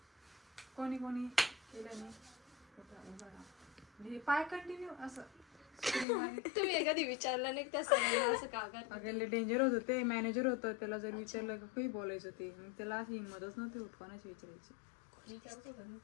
कोणी कोणी केलं नाही पाय कंटिन्यू असं तुम्ही एखादी विचारलं नाही त्या सरांना असं का करता. अगं डेंजर होतं ते मॅनेजर होतं त्याला जर विचारलं का काही बोलायचं ते मग त्याला अशी हिंमतच नव्हती होत कोणाची विचारायची.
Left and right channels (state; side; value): drops out; right; at 6.1 s